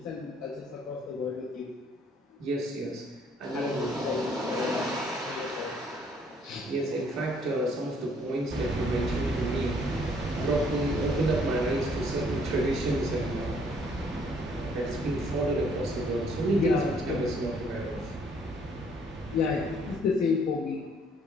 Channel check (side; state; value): both; normal; correlation 0.64